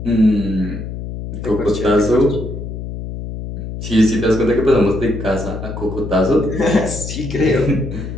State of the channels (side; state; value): left; noise; hum, 8 dB below the sound